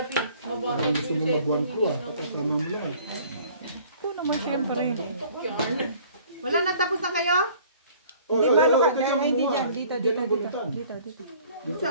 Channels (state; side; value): inverted; both; correlation -0.53